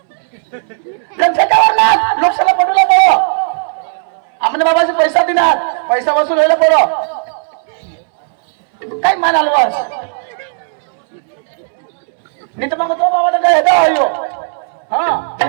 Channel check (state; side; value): silent; left; digital silence